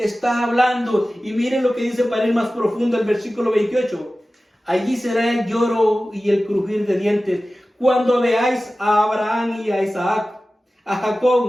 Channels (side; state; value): both; normal; correlation 0.96